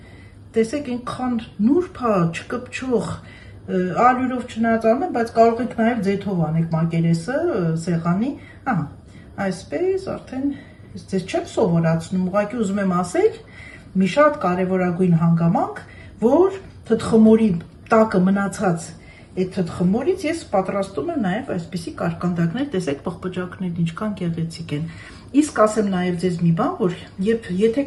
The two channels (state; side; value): identical; both; correlation 1.00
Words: տեսեք ինքան նուրբ է, չկպչող, ալյուրով չնայած անում եմ, բայց կարող եք նաև ձեթով անեք մակերեսը, սեղանի, ահա, այսպես արդեն, ես ձեզ չեմ սովորացնում, ուղղակի ուզում եմ ասել, մի շատ կարևորագույն հանգամանք, որ թթխմորի տակը մնացած այդ թթխմորից ես պատրաստում եմ նաև այսպիսի կարկանդակներ, տեսեք պղպջակներն ինչքան գեղեցիկ են։ Իսկ ասեմ նաև ձեզ մի բան, որ եթե